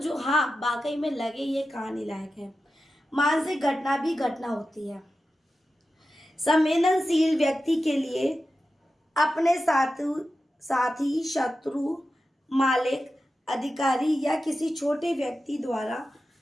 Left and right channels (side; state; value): both; normal; correlation 0.92